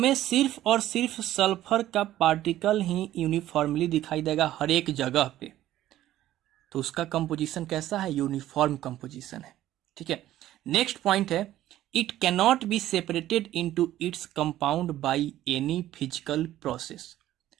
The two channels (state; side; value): quieter; left; 13.7 dB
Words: सिर्फ और सिर्फ सल्फर का पार्टिकल ही यूनिफॉर्मली दिखाई देगा हर एक जगह पे। तो उसका कंपोजिशन कैसा है, यूनिफॉर्म कंपोजिशन है। ठीक है। नेक्स्ट पॉइंट है, it cannot be separated into its compound by any physical process.